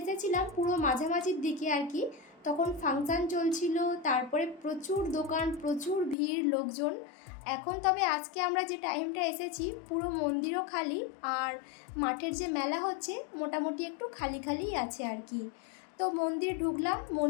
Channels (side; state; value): right; drops out; at 6.2 s